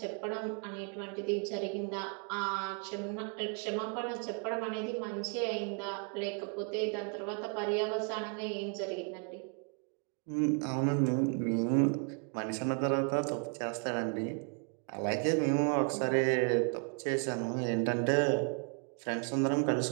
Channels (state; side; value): quieter; left; 39.8 dB